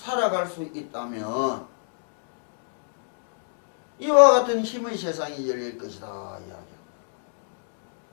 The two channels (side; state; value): right; silent; digital silence